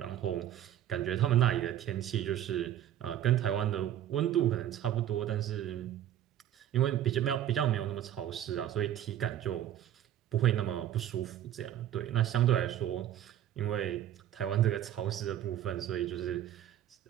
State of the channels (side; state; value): left; quieter; 11.3 dB